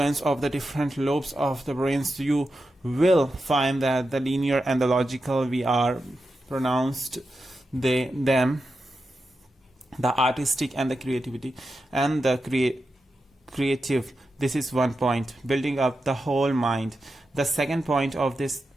of the different lobes of the brains, you will find that the linear and the logical, we are pronounced them, the artistic and the creativity and the creative. This is one point, building up the whole mind. The second point of this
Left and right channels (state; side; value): normal; both; correlation 0.89